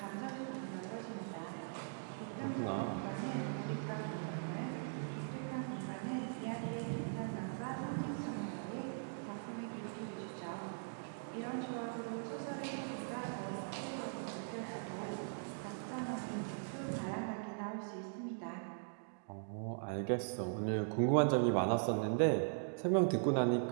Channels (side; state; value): left; silent; digital silence